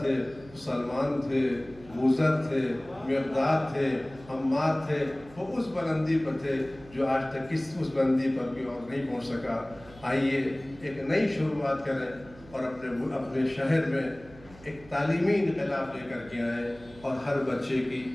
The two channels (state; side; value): noise; right; hum, 21 dB below the sound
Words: تھے سلمان تھے، موذر تھے، مقداد تھے، عمار تھے، وہ اس بلندی پر تھے جو آج تک اس بلندی پر بھی اور نہیں پہنچ سکا. آئیے ایک نئی شروعات کریں اور اپنے شہر میں ایک تعلیمی انقلاب لے کر کے آئیں اور ہر بچے کی